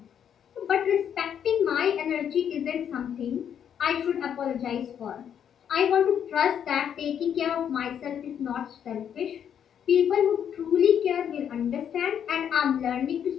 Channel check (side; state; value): right; quieter; 8.7 dB